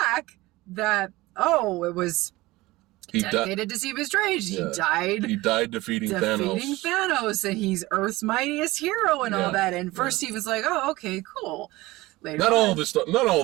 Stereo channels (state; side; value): quieter; left; 19.8 dB